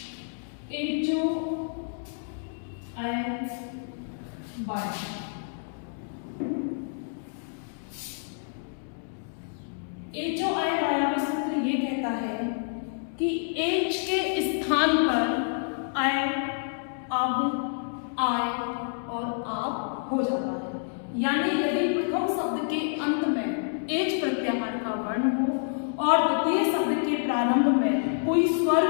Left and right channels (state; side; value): silent; right; digital silence